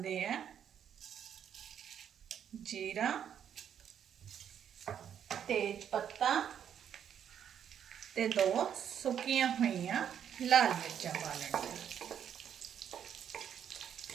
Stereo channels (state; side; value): quieter; left; 8.9 dB